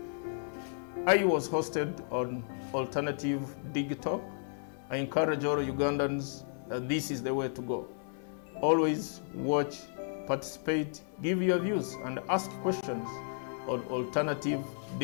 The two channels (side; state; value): right; silent; 56 dB below the other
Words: I was hosted on Alternative Dig Talk. I encourage all Ugandans that this is the way to go. Always watch, participate, give your views and ask questions on Alternative